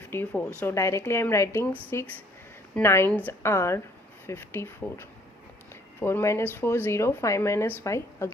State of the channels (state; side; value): normal; both; correlation 0.61